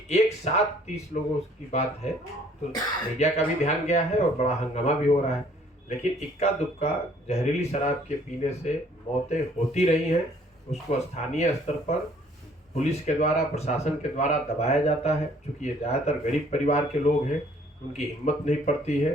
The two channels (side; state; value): both; normal; correlation 0.59